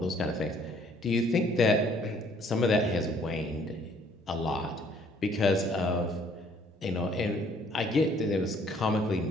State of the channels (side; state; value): both; normal; correlation 0.61